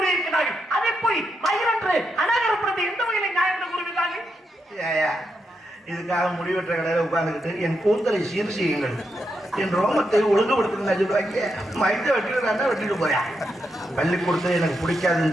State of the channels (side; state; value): both; normal; correlation 0.83